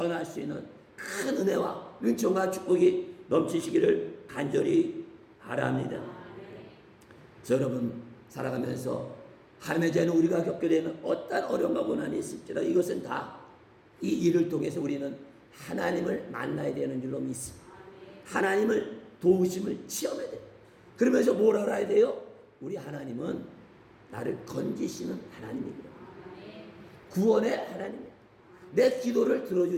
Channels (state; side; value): identical; both; correlation 1.00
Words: 수 있는 큰 은혜와 은총과 축복이 넘치시기를 간절히 바랍니다. 그래서 여러분 살아가면서 하나님의 자녀 우리가 겪게 되는 어떤 어려움과 고난이 있을지라도 이것은 다 이 일을 통해서 우리는 하나님을 만나야 되는 줄로 믿습니다. 하나님을 도우심을 체험해야 돼요. 그러면서 뭘 알아야 돼요? 우리 하나님은 나를 건지시는 하나님이구나. 구원의 하나님이야. 내 기도를